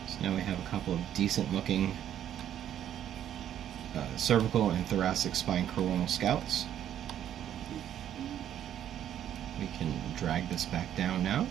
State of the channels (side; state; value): left; quieter; 10.6 dB